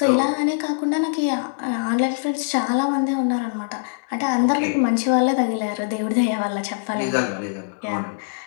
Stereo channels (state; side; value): silent; right; 64 dB below the other